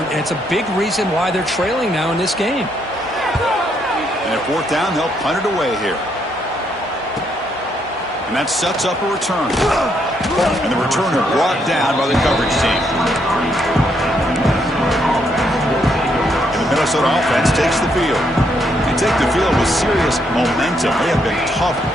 and it's a big reason why they're trailing now in this game. And at 4th down, they'll punt it away here. And that sets up a return. And the returner brought down by the coverage team. And the Minnesota offense takes the field. They take the field with serious momentum. They have been tough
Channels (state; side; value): normal; both; correlation 0.75